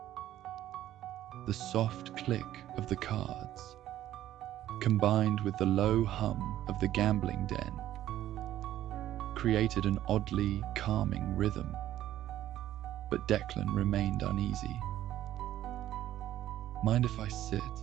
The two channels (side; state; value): left; quieter; 13.0 dB